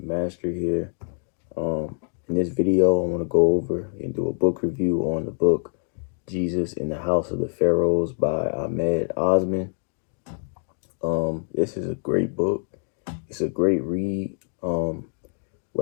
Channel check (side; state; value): right; silent; 57 dB below the other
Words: Master here. In this video, I want to go over and do a book review on the book Jesus in the House of the Pharaohs by Ahmed Osmen. This is a great book. It's a great read.